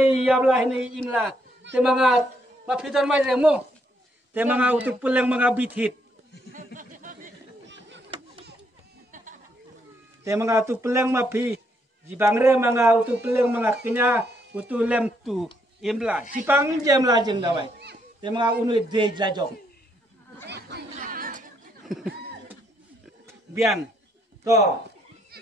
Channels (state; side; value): normal; both; correlation 0.74